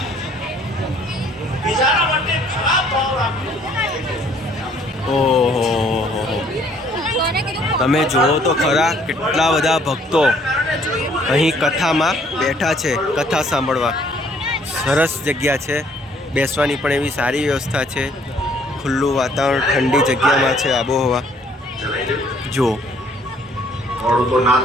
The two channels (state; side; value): normal; both; correlation 0.62